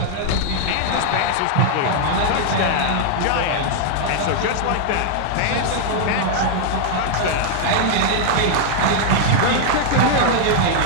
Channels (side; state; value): both; different; correlation -0.01